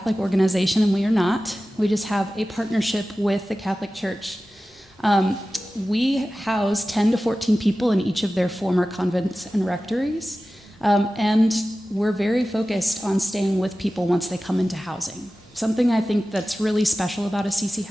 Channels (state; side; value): normal; both; correlation 0.95